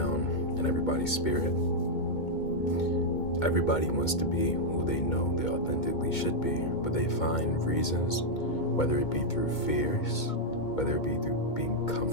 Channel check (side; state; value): right; late; 2.3 ms